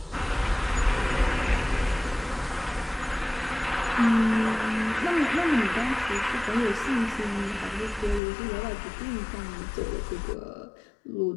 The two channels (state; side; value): drops out; right; at 8.2 s